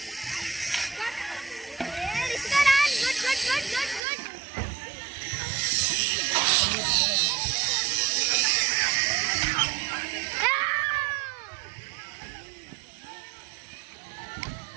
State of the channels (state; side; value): drops out; left; at 4.0 s